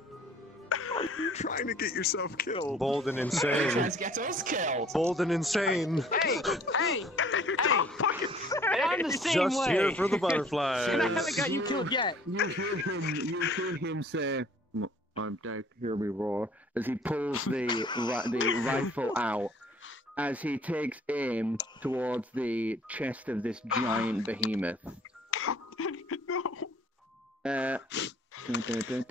You're trying to get yourself killed. Bold and insane. Trying to get us killed. Bold and insane. Hey! I'm the same Just way. here for the butterflies. And I haven't got you killed yet. You hear him say, "I'm Deck, hear me roar," as he pulls the rifle out. As he takes aim towards the chest of this giant behemoth.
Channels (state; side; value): normal; both; correlation 0.55